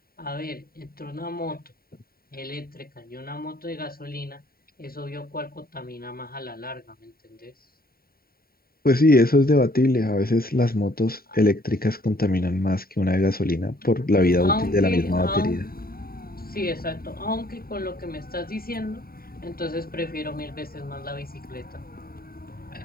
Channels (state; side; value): late; right; 0.43 ms